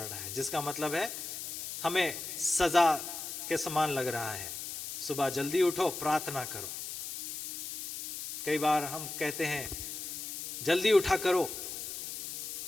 रहा है, जिसका मतलब है हमें सजा के समान लग रहा है। सुबह जल्दी उठो, प्रार्थना करो। कई बार हम कहते हैं जल्दी उठा करो,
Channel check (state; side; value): noise; left; hiss, 6 dB below the sound